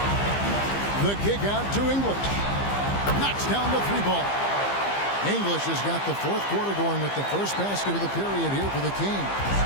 The kick out to English. Knocks down the three ball. English has got the fourth quarter going with the first basket of the period here for the Kings.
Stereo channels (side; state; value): right; late; 15 ms